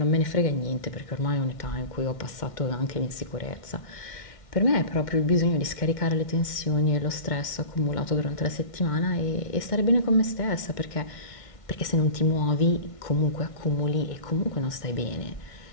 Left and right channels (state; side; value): late; right; 1.6 ms